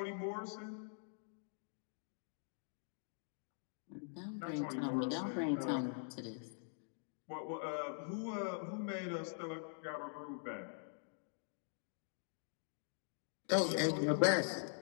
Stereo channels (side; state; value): right; silent; digital silence